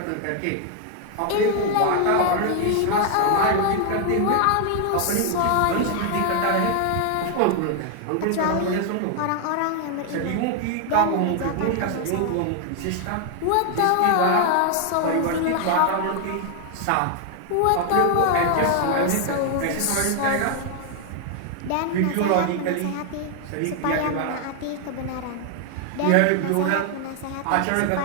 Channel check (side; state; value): both; different; correlation 0.00